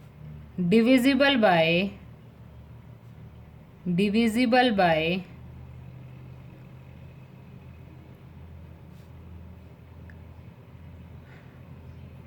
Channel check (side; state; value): both; identical; correlation 1.00